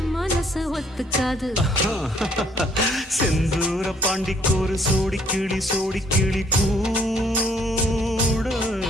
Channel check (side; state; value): both; normal; correlation 0.64